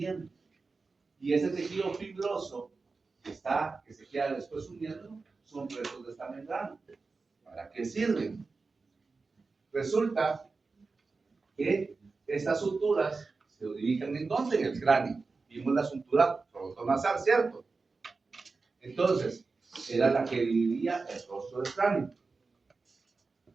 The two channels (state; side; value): quieter; left; 4.1 dB